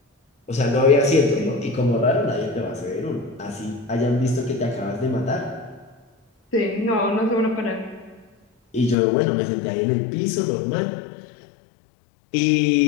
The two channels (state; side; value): drops out; right; at 9.0 s